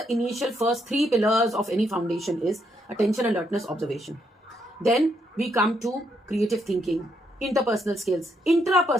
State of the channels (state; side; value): normal; both; correlation 0.76